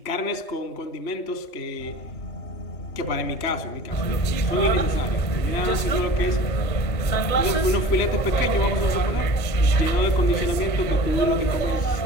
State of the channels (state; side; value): late; right; 1.8 ms